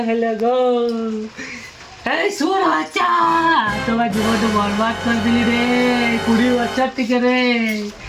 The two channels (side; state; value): both; identical; correlation 1.00